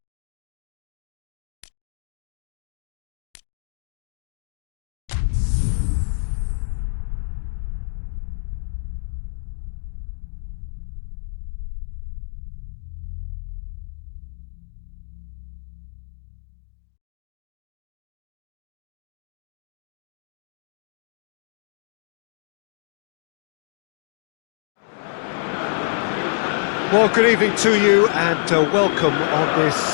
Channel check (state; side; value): silent; right; digital silence